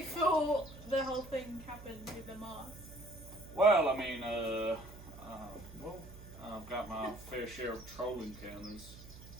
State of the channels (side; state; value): right; noise; hum, 16 dB below the sound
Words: the whole thing happened with the Mars. Well, I mean, I've got my fair share of troll encounters.